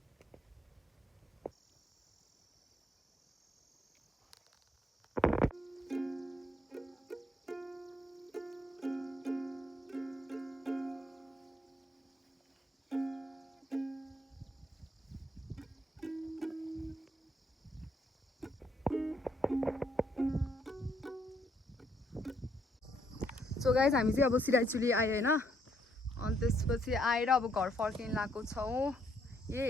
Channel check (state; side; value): normal; both; correlation 0.71